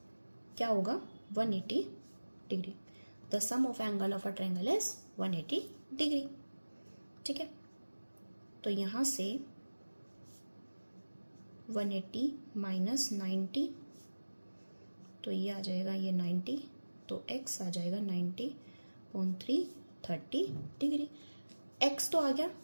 क्या होगा, 180 degree. The sum of angle of a triangle is 180 degree. ठीक है, तो यहां से 180 माइनस 90, तो ये आ जाएगा ये 90, तो x आ जाएगा 90.3 30 डिग्री। x तो आ गया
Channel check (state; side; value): inverted; both; correlation -1.00